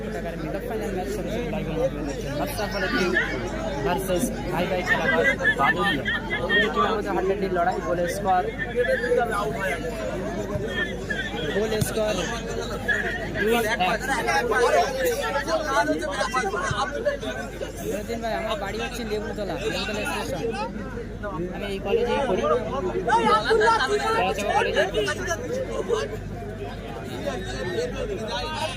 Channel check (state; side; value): identical; both; correlation 1.00